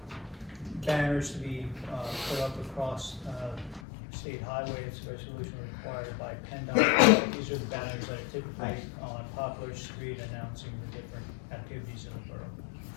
banners to be put up across state highway. It's a resolution required by PennDOT. These are the banners that are typically on Poplar Street announcing the different activities in the borough.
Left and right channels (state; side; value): drops out; right; at 3.8 s